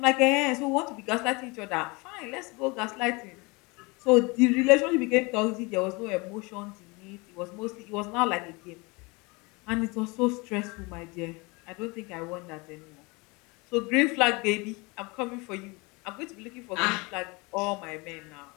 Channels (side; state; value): right; quieter; 26.6 dB